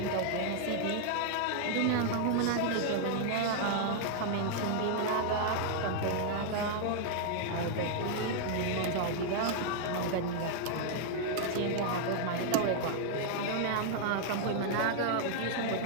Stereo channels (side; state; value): both; different; correlation 0.00